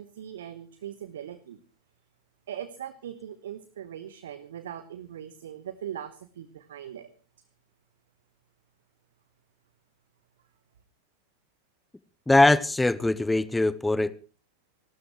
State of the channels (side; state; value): both; normal; correlation 0.91